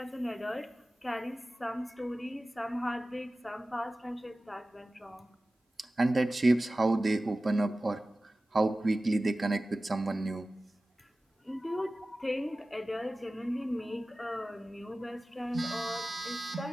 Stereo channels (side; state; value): both; normal; correlation 0.96